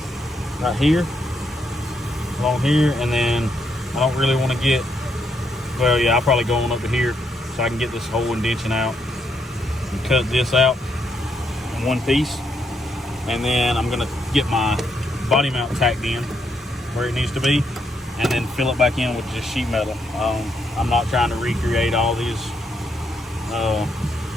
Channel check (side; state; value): both; normal; correlation 0.77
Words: right here, along here, and then I don't really want to get, well, yeah, I'll probably go on up to here so I can get this whole indention out and cut this out in one piece. And then I'm gonna get my body mount tacked in where it needs to be, and then fill it back in with just sheet metal. I'm not trying to recreate all these